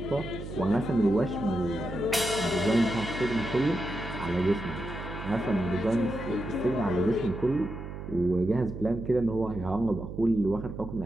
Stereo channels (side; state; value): right; noise; hum, 9 dB below the sound